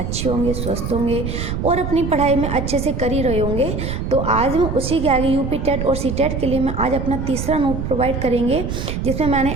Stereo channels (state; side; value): noise; right; rumble, 4 dB below the sound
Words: होंगे, स्वस्थ होंगे और अपनी पढ़ाई में अच्छे से कर ही रहे होंगे। तो आज मैं उसी के आगे यूपी टेट और सी टेट के लिए मैं आज अपना तीसरा नोट प्रोवाइड करेंगे, जिसमें मैंने